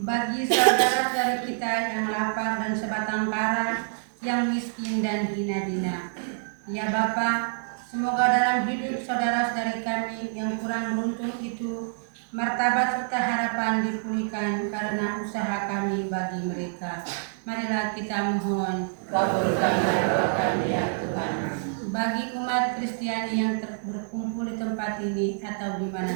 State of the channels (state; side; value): silent; left; digital silence